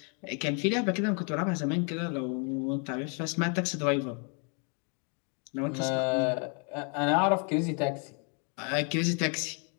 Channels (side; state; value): right; quieter; 39.1 dB